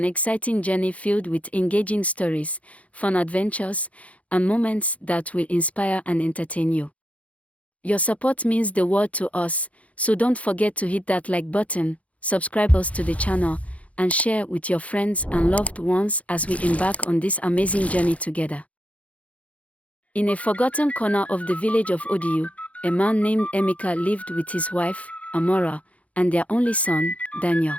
exciting journey filled with engaging stories, fun adventures, and moments that will inspire and entertain you. Your support means the world to us, so don't forget to hit that like button, subscribe us to the channel, and share with your friends and loved ones as we embark on this amazing journey together. In a forgotten corner of the village of Odiu, a man named Emeka lived with his wife, Amara, and their only son, Daniel.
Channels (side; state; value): right; late; 0.066 ms